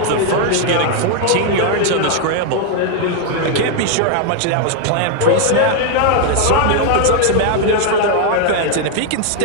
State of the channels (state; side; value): different; both; correlation 0.01